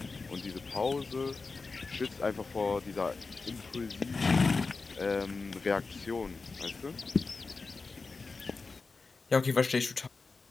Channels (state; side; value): quieter; right; 4.2 dB